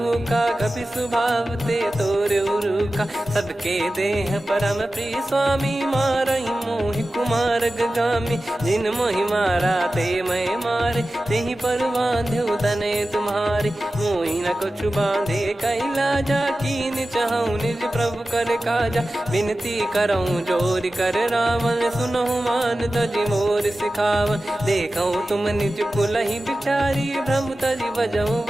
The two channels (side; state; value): both; normal; correlation 0.95